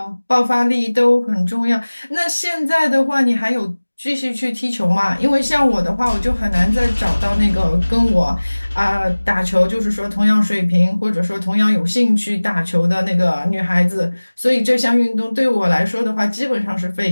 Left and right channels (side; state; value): both; inverted; correlation -1.00